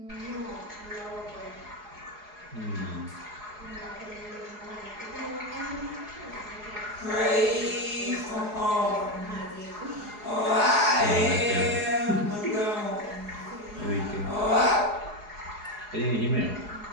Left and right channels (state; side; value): late; left; 4.8 ms